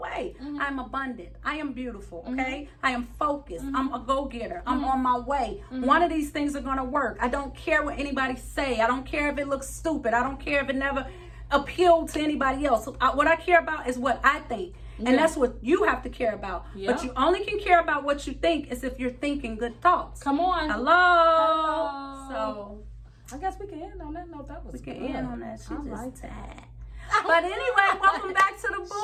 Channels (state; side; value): identical; both; correlation 1.00